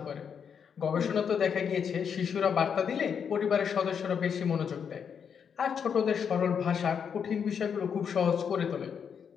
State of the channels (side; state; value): right; quieter; 7.2 dB